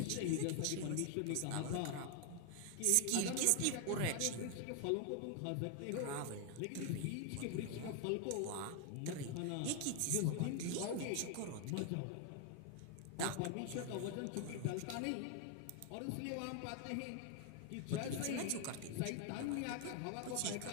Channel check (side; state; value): both; different; correlation 0.00